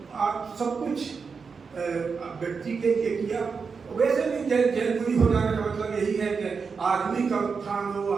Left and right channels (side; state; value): left; quieter; 5.3 dB